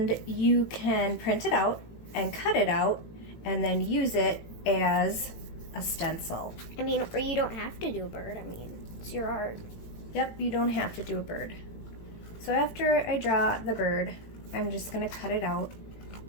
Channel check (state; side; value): late; right; 18 ms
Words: you can print it out and cut it out and then use it as a stencil. I mean, or you don't have to do a bird. I mean, it's your art. Yep, you don't have to do a bird. So after I draw the bird, I'm just going to cut it out,